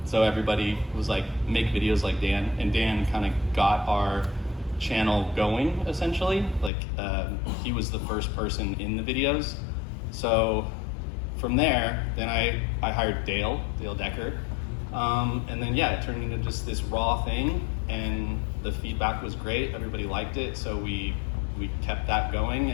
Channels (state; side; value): drops out; right; at 6.7 s